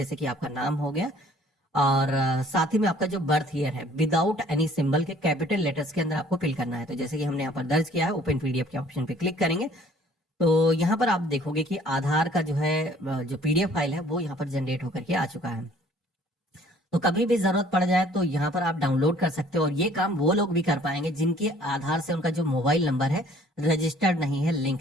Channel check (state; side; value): normal; both; correlation 0.56